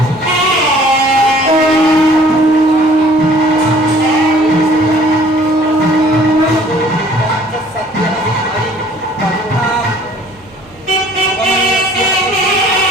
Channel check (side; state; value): right; noise; hum, 28 dB below the sound